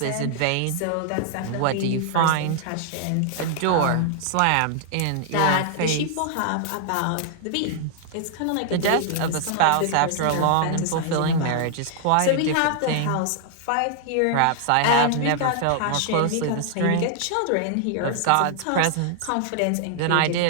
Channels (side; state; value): both; different; correlation -0.01